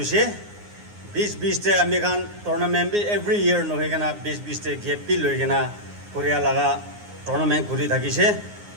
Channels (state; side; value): late; left; 9.6 ms